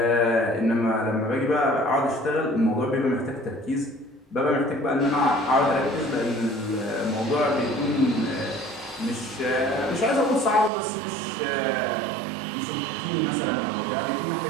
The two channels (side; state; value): left; drops out; at 10.7 s